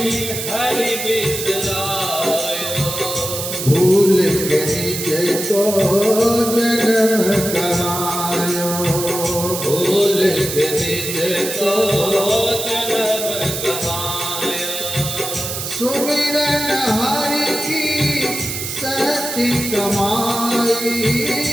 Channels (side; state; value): right; noise; hiss, 5 dB below the sound